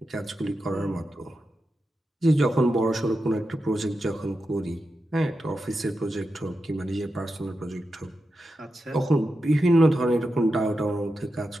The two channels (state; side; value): normal; both; correlation 0.89